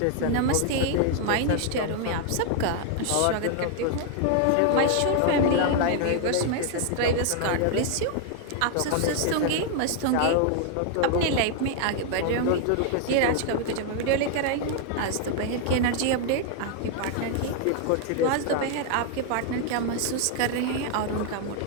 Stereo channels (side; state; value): both; different; correlation 0.00